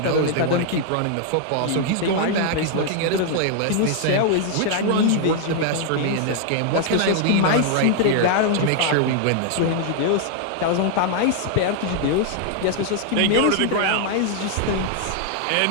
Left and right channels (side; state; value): both; different; correlation 0.00